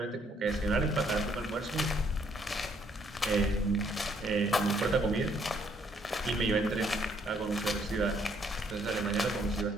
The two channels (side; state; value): both; normal; correlation 0.68